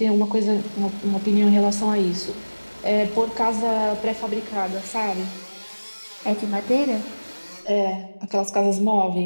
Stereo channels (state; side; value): inverted; both; correlation -1.00